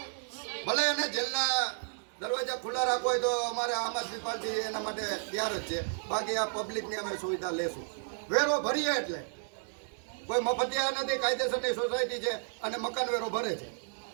ભલે એને જેલના દરવાજા ખુલ્લા રાખવો હોય તો અમારે આમ આદમી પાર્ટી એના માટે તૈયાર જ છે. બાકી આ પબ્લિકની અમે સુવિધા લેશું. વેરો ભરીએ એટલે કોઈ મફતિયા નથી, કાયદેસરની સોસાયટી છે અને મકાન વેરો ભરે છે.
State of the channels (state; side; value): silent; left; digital silence